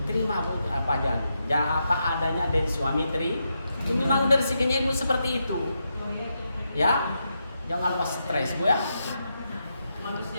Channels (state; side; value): inverted; both; correlation -0.84